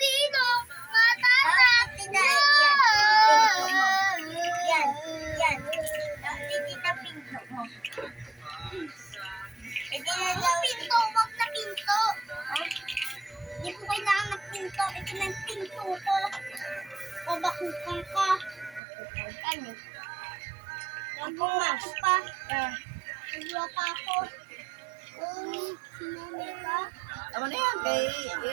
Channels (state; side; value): drops out; left; at 18.8 s